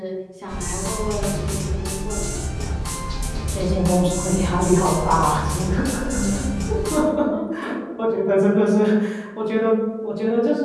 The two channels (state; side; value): identical; both; correlation 1.00